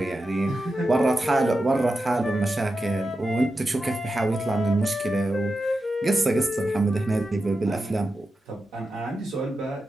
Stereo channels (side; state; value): both; normal; correlation 0.90